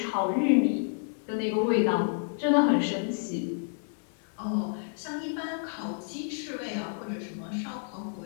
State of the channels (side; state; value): right; silent; 58 dB below the other